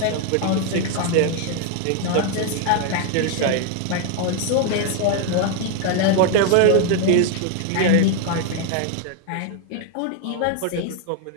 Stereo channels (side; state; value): both; different; correlation 0.01